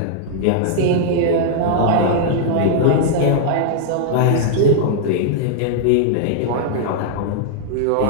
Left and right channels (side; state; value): both; different; correlation -0.01